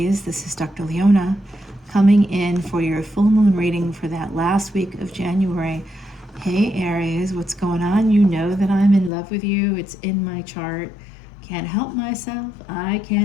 This is Dr. Leona coming in for your full moon reading for that last week of January. Hey Aries, what's going on? You know that I'm in love with you. It's in my chart. Can't help myself. I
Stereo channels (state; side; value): drops out; right; at 9.1 s